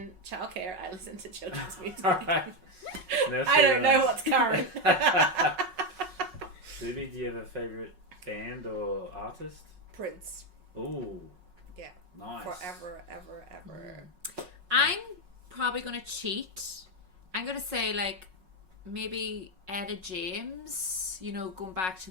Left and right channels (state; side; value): late; left; 5.4 ms